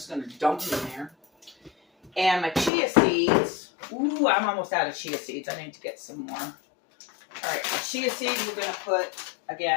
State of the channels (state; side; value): drops out; right; at 2.7 s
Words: going to dump it in there. And my chia seeds. Ooh, I'm almost out of chia seeds. I need to get some more. All right, the chia seeds we're going to put,